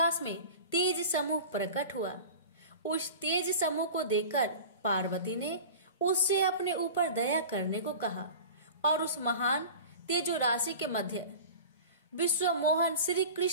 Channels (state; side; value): inverted; both; correlation -0.36